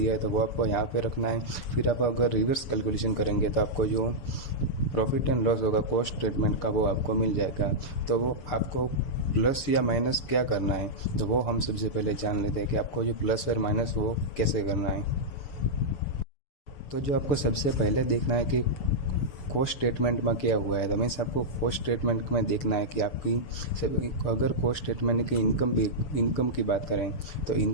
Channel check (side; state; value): right; late; 7.0 ms